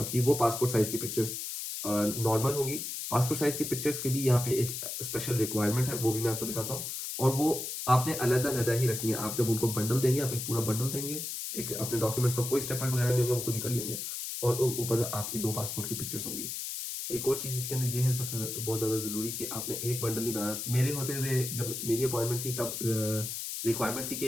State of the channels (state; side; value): noise; left; hiss, 5 dB below the sound